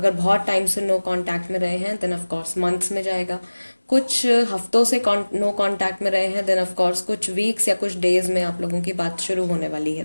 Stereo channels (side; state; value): both; inverted; correlation -1.00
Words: बहुत टाइम से नो कांटेक्ट में रहे हैं देन ऑफ कोर्स मंथ्स में जाएगा, कुछ हफ्तों से नो कांटेक्ट में रहे हैं, देन ऑफ कोर्स कुछ वीक्स या कुछ डेज में आप लोगों की बात शुरू होने वाली है